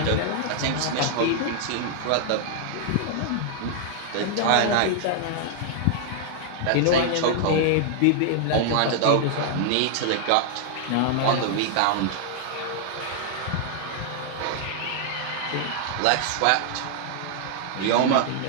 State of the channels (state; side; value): different; both; correlation 0.00